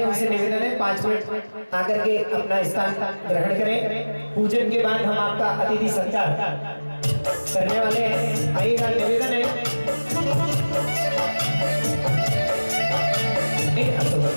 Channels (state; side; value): inverted; both; correlation -1.00